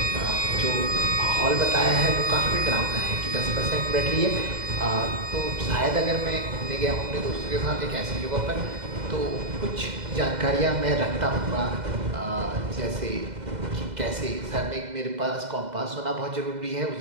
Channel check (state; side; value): late; left; 2.0 ms